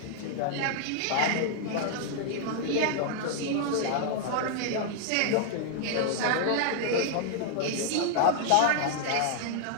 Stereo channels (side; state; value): both; different; correlation -0.01